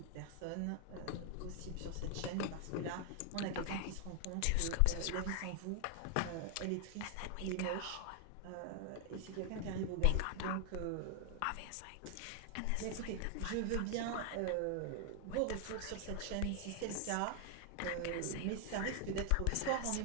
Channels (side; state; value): both; different; correlation 0.00